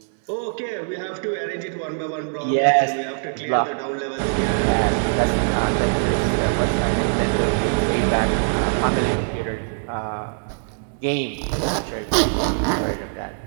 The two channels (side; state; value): left; silent; digital silence